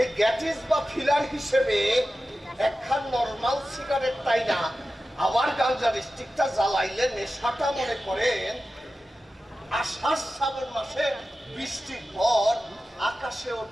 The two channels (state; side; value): normal; both; correlation 0.94